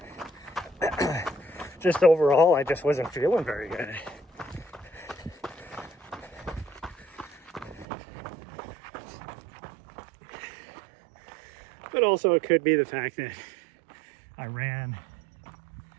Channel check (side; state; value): left; drops out; at 7.9 s